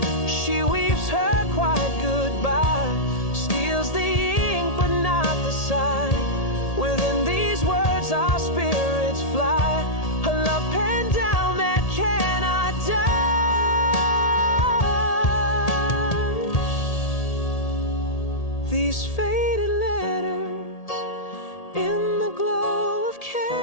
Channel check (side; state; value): right; late; 1.8 ms